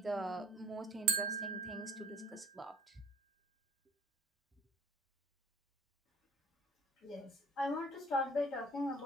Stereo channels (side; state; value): both; normal; correlation 0.51